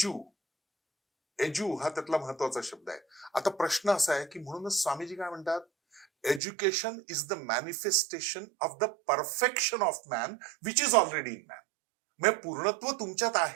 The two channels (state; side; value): drops out; left; at 6.4 s